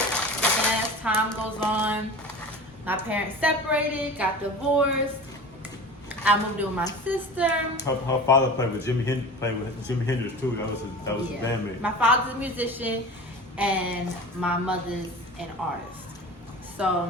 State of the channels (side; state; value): both; normal; correlation 0.35